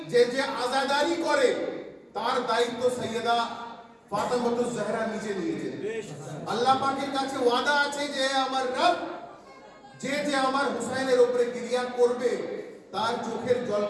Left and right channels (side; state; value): both; identical; correlation 1.00